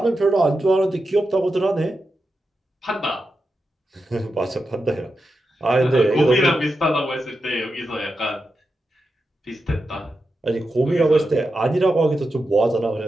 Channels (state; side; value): normal; both; correlation 0.89